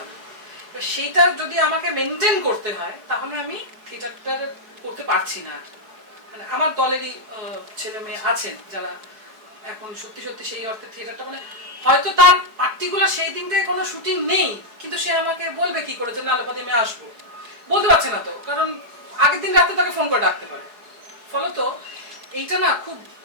সেইটা যদি আমাকে মেনটেন করতে হয়, তাহলে আমি থিয়েটারটা করতে পারছি না। মানে আমার দলেরই ছেলে মেয়ে আছেন যারা এখন সত্যি সেই অর্থে থিয়েটারটা, মানে হয়তো তার পার্টিকুলার সেই দিনটায় কোনো শুটিং নেই, কিন্তু সে আমাকে বলবে কি করে যে না আলোপাতি আমি আসবো, বলতে পারছে না তো, কারণ আগের দিন রাতে তাকে ফোন করে ডাকতে পারে। ফলত এইটা না খুব,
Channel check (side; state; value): left; late; 4.6 ms